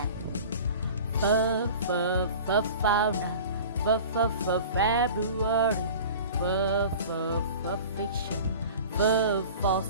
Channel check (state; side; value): inverted; both; correlation -0.40